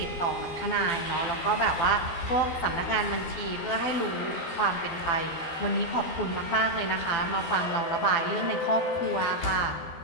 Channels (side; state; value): right; late; 12 ms